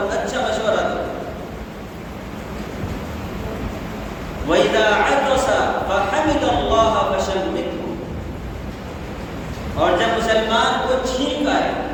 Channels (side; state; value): both; identical; correlation 1.00